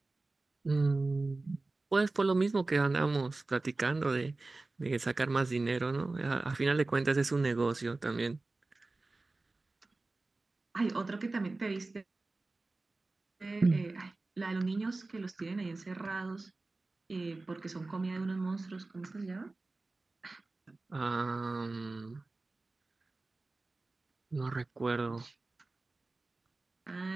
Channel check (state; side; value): quieter; left; 3.3 dB